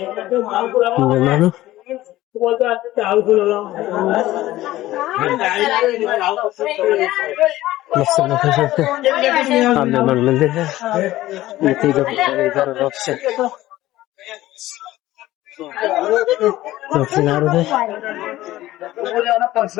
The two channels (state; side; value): quieter; right; 15.9 dB